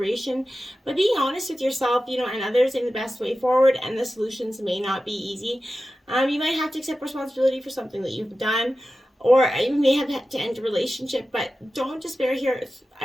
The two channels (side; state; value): both; normal; correlation 0.94